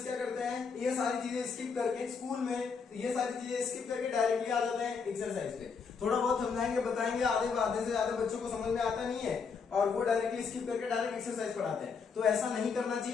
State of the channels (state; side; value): quieter; right; 5.5 dB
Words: क्या करते हैं, ये सारी चीजें स्किप करके स्कूल में ये सारी चीजें स्किप करके डायरेक्टली आ जाते हैं एक्सरसाइज पे। थोड़ा बहुत समझाएंगे, बताएंगे, आधे से ज्यादा बच्चों को समझ में आता नहीं है और वो डायरेक्टली स्किप करके डायरेक्ट एक्सरसाइज पढ़ाते हैं। तो ऐसा नहीं करना